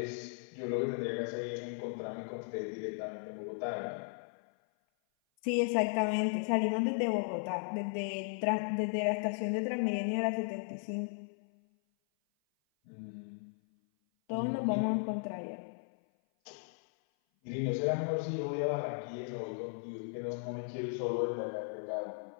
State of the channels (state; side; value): silent; right; 54 dB below the other